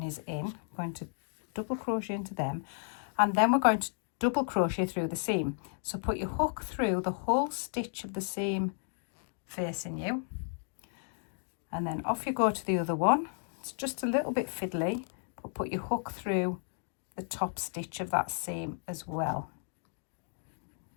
is in. We're going to double crochet into them, and then we're going to double crochet through the seam. So put your hook through the whole stitch of the seam facing you, and then off you go to the other one. It's just a little bit fiddly, but put your hook through the top stitch of that seam as well,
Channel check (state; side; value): silent; right; 55 dB below the other